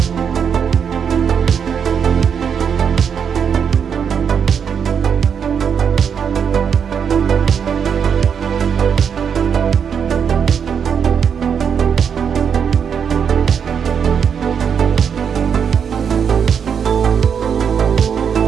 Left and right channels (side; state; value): left; quieter; 7.3 dB